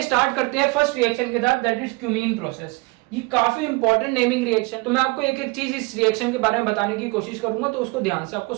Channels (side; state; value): left; quieter; 26.7 dB